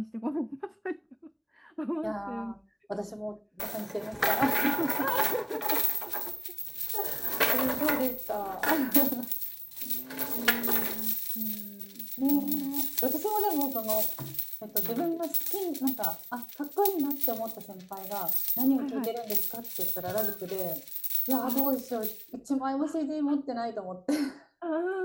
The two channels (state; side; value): identical; both; correlation 1.00